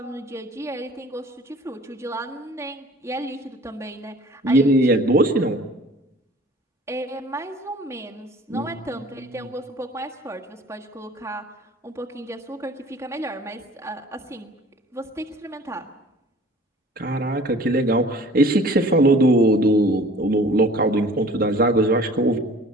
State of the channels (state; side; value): normal; both; correlation 0.48